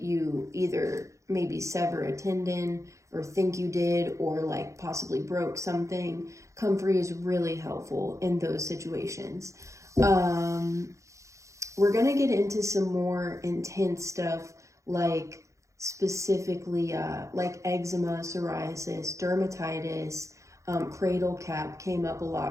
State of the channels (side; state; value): left; late; 0.15 ms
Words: either maybe sever a tendon or think you did, or like possibly broke something. Comfrey is really helpful in those situations. We're going to get into some more intense stuff, like specifically like eczema, psoriasis, dermatitis, cradle cap came up a